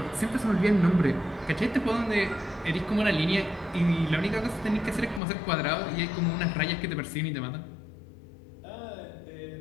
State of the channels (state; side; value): drops out; right; at 5.2 s